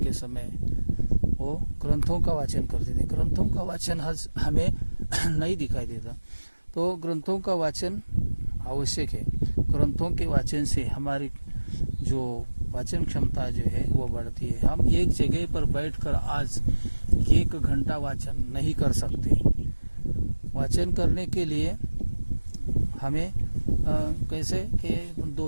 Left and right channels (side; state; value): both; inverted; correlation -1.00